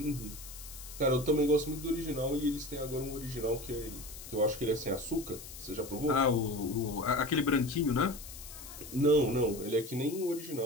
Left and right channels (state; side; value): noise; left; hiss, 13 dB below the sound